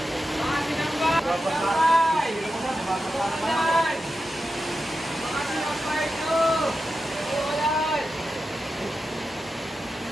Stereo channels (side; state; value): both; normal; correlation 0.90